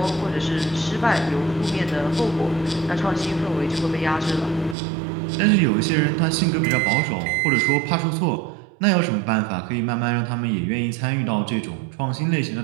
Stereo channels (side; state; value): left; drops out; at 4.8 s